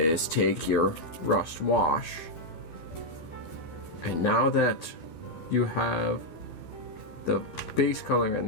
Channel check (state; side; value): late; right; 12 ms